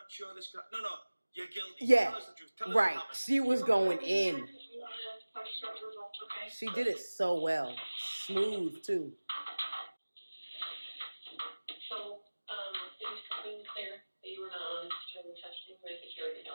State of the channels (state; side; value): inverted; both; correlation -1.00